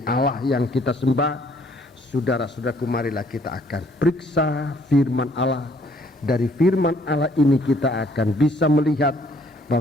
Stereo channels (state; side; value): normal; both; correlation 0.63